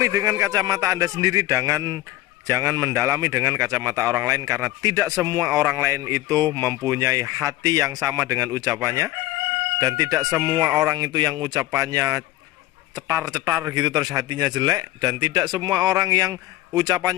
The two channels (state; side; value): quieter; right; 16.5 dB